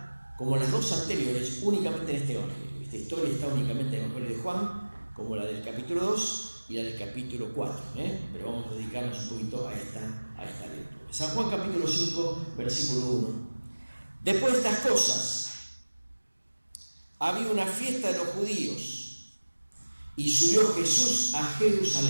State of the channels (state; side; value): inverted; both; correlation -1.00